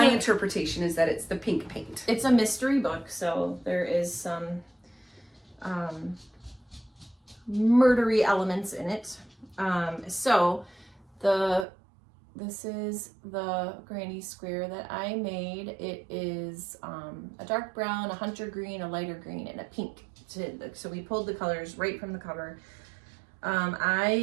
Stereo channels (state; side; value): drops out; left; at 11.7 s